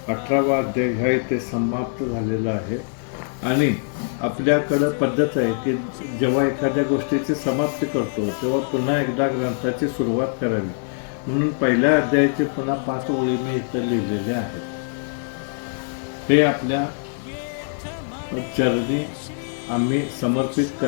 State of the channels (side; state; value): right; silent; digital silence